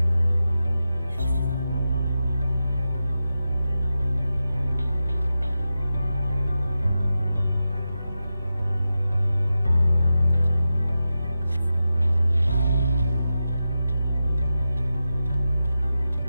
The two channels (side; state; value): both; inverted; correlation -0.91